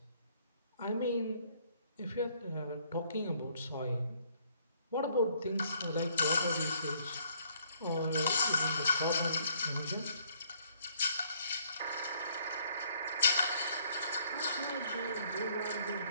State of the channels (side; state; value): both; inverted; correlation -0.64